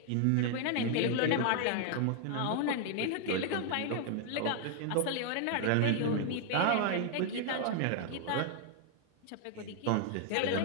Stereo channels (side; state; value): both; different; correlation 0.00